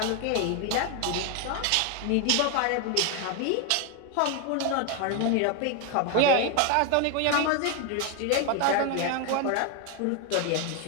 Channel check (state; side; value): different; both; correlation 0.01